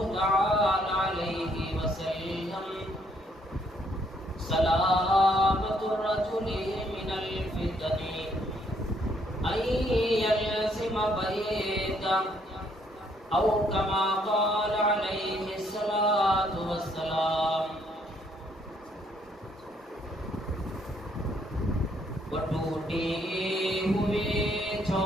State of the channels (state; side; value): normal; both; correlation 0.69